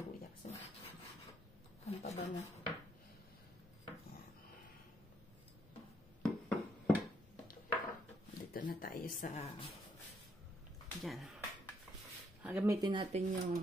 luya kasi ang pabango. Dito na tayo sa dyan. Gamitin natin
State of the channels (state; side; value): normal; both; correlation 0.73